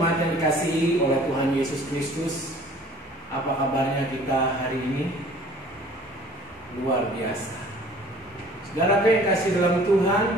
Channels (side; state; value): both; normal; correlation 0.51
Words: yang dikasihi oleh Tuhan Yesus Kristus. Apa kabarnya kita hari ini? Luar biasa. Saudara yang kasih dalam Tuhan,